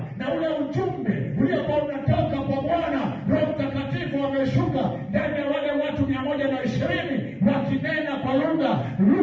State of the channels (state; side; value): identical; both; correlation 1.00